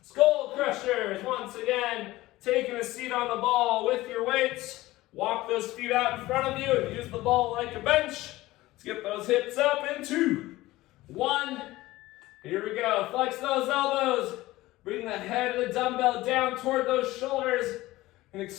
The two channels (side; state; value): right; quieter; 17.8 dB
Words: Skull crushers. Once again, taking a seat on the ball with your weights. Walk those feet out in front of you and use the ball like a bench. Let's get those hips up in 2, 1. Here we go. Flex those elbows. Bring the head of the dumbbell down toward those shoulders and